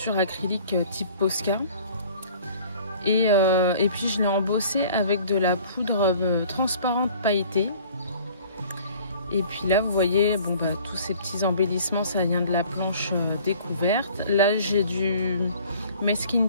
acrylique type Posca et puis je l'ai embossé avec de la poudre transparente pailletée. Et puis là, vous voyez, bon, bah, tous ces petits embellissements, ça vient de la planche découverte. Là, j'ai du masking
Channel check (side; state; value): both; inverted; correlation -0.50